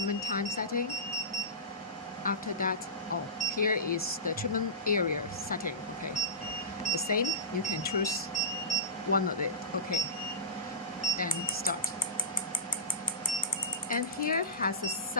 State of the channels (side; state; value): both; normal; correlation -0.19